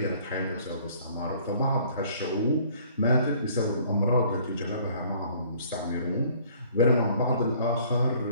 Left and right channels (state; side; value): inverted; both; correlation -0.57